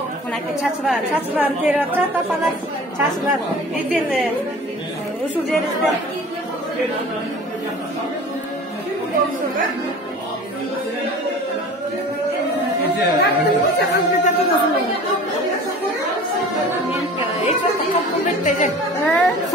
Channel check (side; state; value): both; normal; correlation 0.41